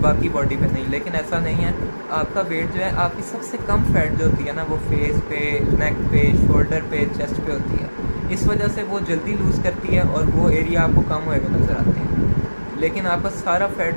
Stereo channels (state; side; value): inverted; both; correlation -1.00